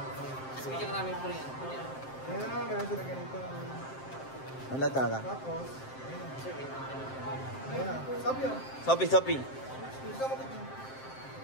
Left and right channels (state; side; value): late; right; 7.6 ms